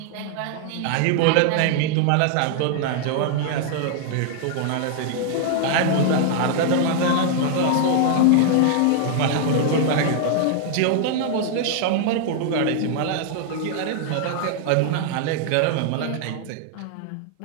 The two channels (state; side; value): different; both; correlation 0.00